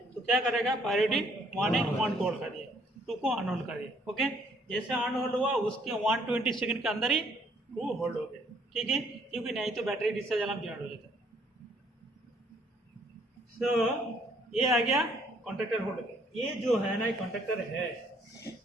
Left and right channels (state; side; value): normal; both; correlation 0.65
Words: तो क्या करेगा, प्रायोरिटी 1 है, 1 को होल्ड कर दिया, 2 को अनहोल्ड कर दिया। ओके, जैसे अनहोल्ड हुआ उसके 120 सेकंड के अंदर ही 2 होल्ड हो गया। ठीक है, क्योंकि नहीं तो बैटरी डिस्चार्ज अलार्म जनरेट हो जाता है। तो ये आ गया कॉन्ट्रैक्टर होल्ड के। ये जो है ना, कॉन्ट्रैक्टर है,